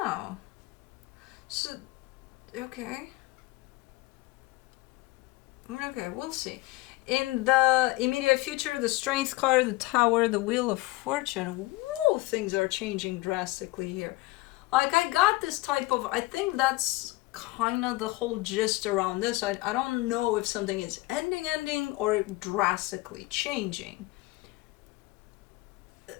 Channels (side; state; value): right; quieter; 20.6 dB